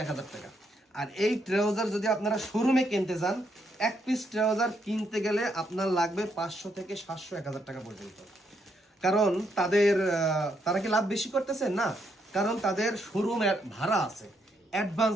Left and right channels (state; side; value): normal; both; correlation 0.76